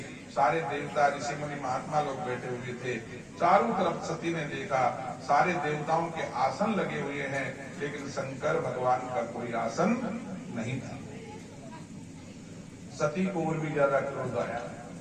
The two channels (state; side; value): identical; both; correlation 1.00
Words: सारे देवता ऋषि मुनि महात्मा लोग बैठे हुए थे, चारों तरफ सती ने देखा, सारे देवताओं के आसन लगे हुए हैं, लेकिन शंकर भगवान का कोई आसन नहीं था। सती को और भी ज्यादा क्रोध आया,